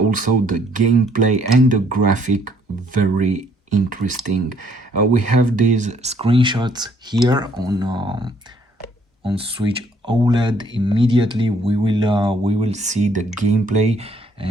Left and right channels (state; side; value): normal; both; correlation 0.64